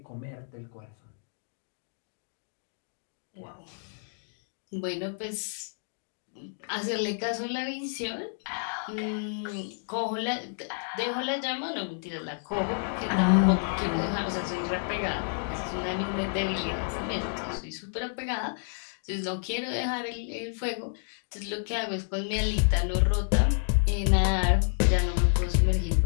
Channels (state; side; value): silent; right; digital silence